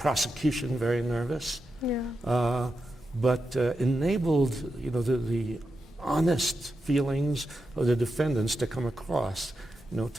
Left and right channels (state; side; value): normal; both; correlation 0.88